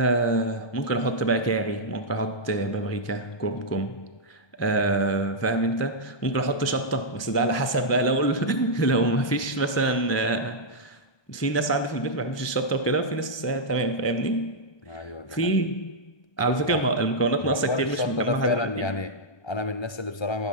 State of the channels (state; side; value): late; right; 1.2 ms